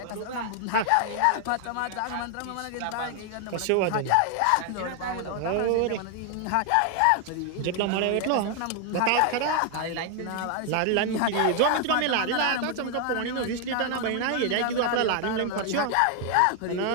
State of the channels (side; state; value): both; different; correlation 0.00